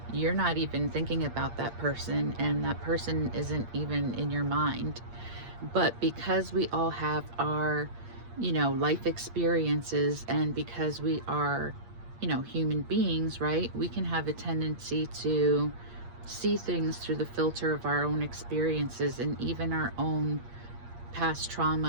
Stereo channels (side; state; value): left; late; 8.6 ms